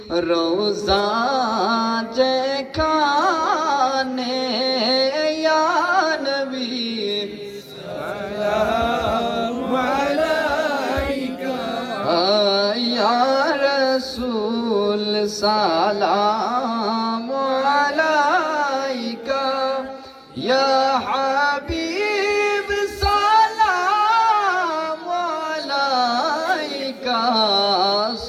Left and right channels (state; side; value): identical; both; correlation 1.00